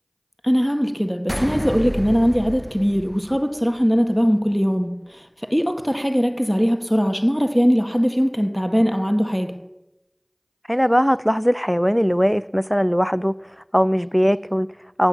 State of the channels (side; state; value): both; identical; correlation 1.00